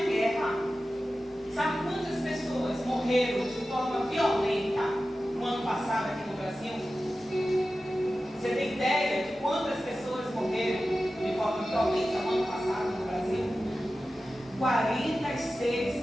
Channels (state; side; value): normal; both; correlation 0.94